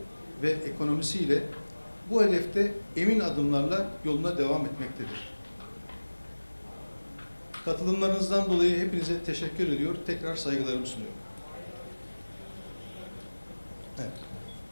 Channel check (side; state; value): both; inverted; correlation -1.00